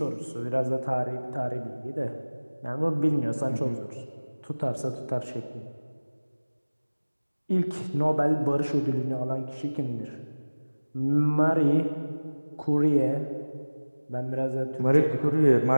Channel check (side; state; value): both; inverted; correlation -1.00